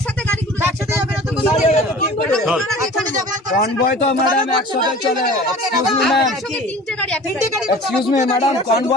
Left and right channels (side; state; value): both; normal; correlation 0.43